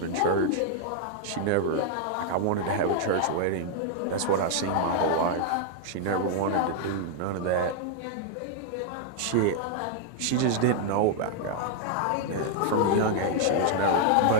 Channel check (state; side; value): different; both; correlation -0.01